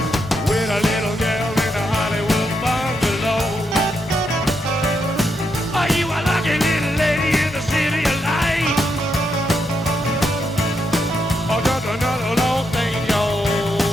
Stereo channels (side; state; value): both; normal; correlation 0.81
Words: With a little girl in a Hollywood bungalow. Are you a lucky little lady in the city of light? Or just another long thing, yo?